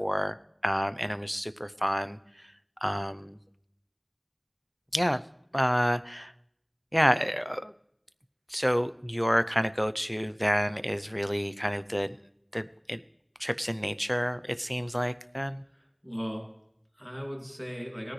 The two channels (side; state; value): both; identical; correlation 1.00